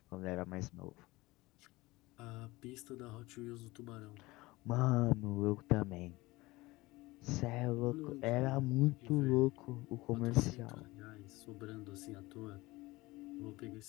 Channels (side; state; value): right; quieter; 20.7 dB